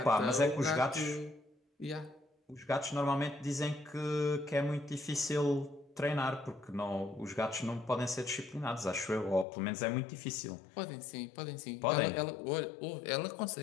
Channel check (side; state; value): right; drops out; at 9.5 s